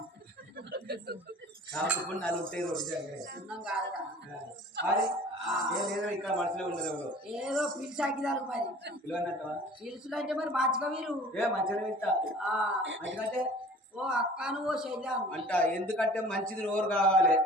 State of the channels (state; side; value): normal; both; correlation 0.46